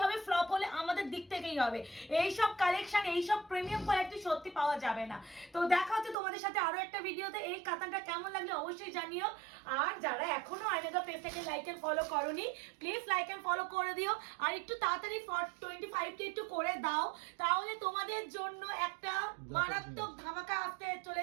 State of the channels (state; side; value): drops out; left; at 6.2 s